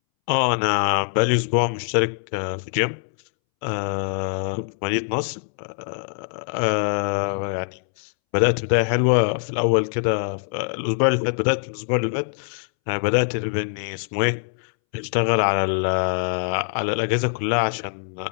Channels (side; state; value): right; silent; 63 dB below the other